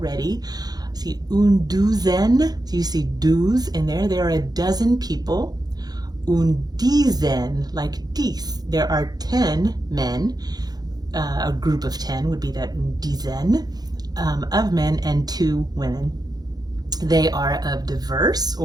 see, une douzaine, so you see douze in there, there are a dozen people. Une dizaine, like 10, there are 10 men, a group of 10 would be that une dizaine of men, and 2 women. They are of diverse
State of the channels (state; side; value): late; left; 0.19 ms